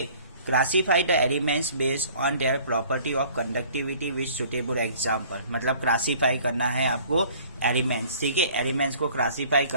Classify the elements based on their property of conductivity with suitable example. मतलब क्लासीफाई करना है आपको एलिमेंट्स, ठीक है. एलिमेंट्स को क्लासीफाई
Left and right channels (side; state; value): both; inverted; correlation -0.53